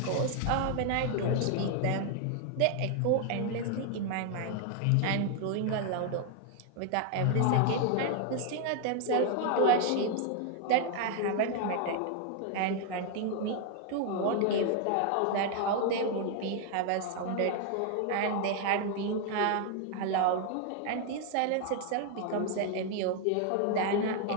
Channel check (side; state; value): both; different; correlation 0.00